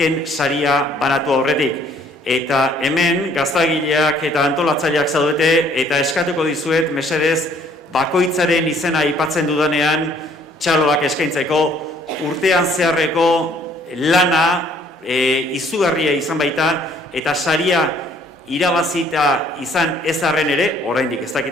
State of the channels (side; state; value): both; normal; correlation 0.61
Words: saria banatu aurretik. Eta hemen gaztagileak eta antolatzaileak zaudete, eta eskatuko dizuet, mesedez, bakoitzaren izena aipatzen dudanean, txaloak eskaintzeko, urtean zeharreko lana, izugarria izan baita, eta saria irabazita izan ez arren ere, oraindik ez